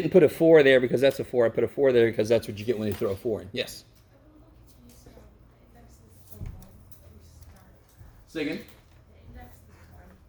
put a 4 there because that's a 4. I put a 4 there because that's what you get when you throw a 4 in. Yes. Say again?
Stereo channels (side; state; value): both; identical; correlation 1.00